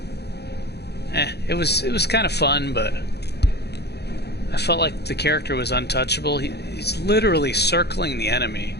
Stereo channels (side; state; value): right; late; 0.48 ms